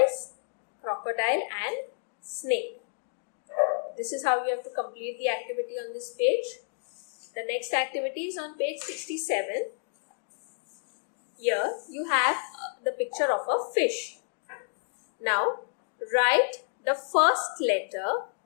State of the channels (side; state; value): right; silent; digital silence